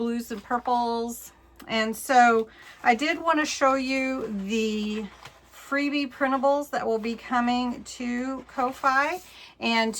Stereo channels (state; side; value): identical; both; correlation 1.00